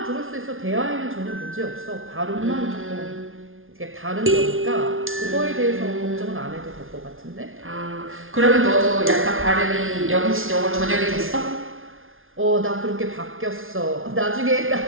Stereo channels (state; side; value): late; left; 0.60 ms